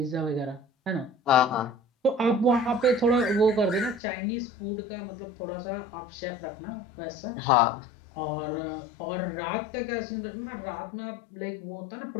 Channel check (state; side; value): drops out; right; at 4.0 s